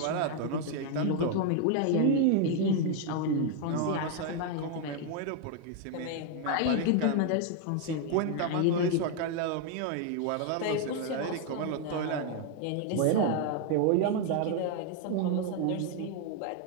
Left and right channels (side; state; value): both; different; correlation 0.01